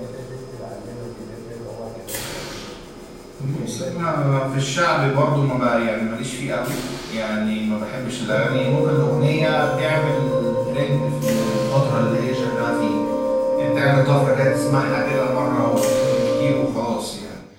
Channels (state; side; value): identical; both; correlation 1.00